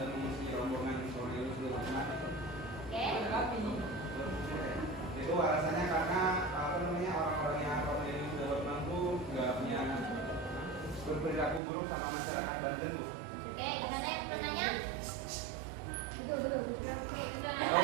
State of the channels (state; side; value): drops out; left; at 11.6 s